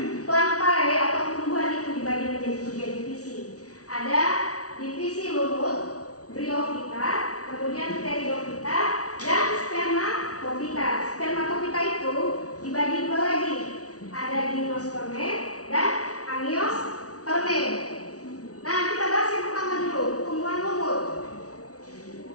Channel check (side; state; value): right; late; 0.67 ms